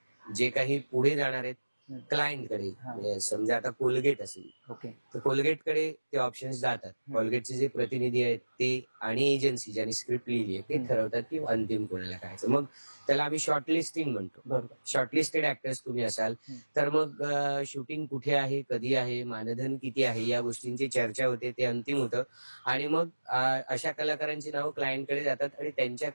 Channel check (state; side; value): inverted; both; correlation -1.00